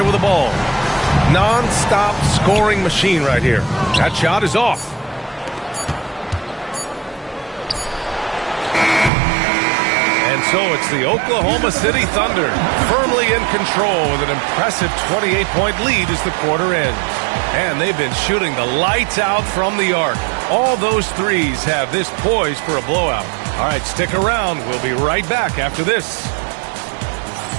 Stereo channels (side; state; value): left; drops out; at 9.1 s